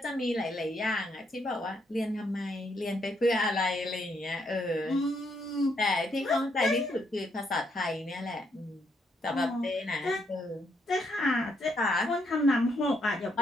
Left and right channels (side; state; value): both; normal; correlation 0.75